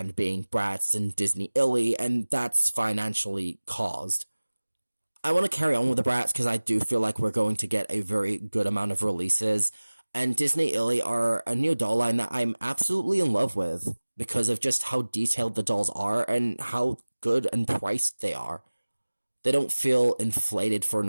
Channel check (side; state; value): both; inverted; correlation -1.00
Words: being Bratz and Disney Illy, and that's financially caused. I want to carry on with the Bratz because I do feel like we're going to get a very good amount of releases, and Disney Illy are a new doll line that I'm absolutely in love with, because of just how detailed the dolls are and how good and priced they are. They don't feel inflated for